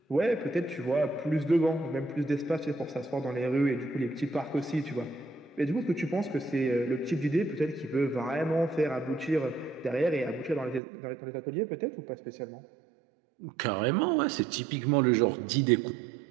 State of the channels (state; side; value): drops out; left; at 10.8 s